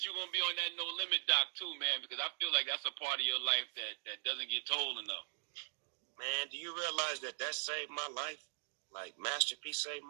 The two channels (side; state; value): left; silent; digital silence